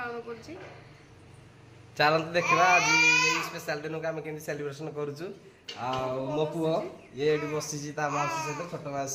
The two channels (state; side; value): identical; both; correlation 1.00